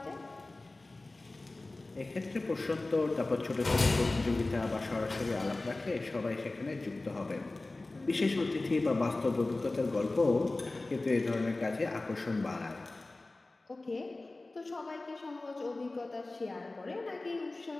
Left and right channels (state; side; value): quieter; right; 3.1 dB